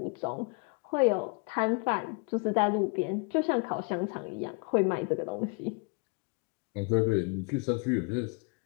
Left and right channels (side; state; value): right; quieter; 33.5 dB